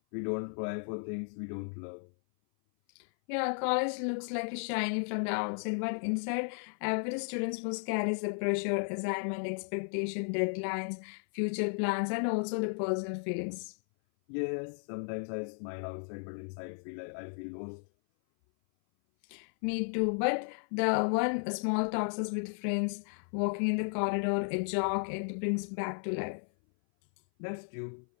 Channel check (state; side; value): silent; right; 55 dB below the other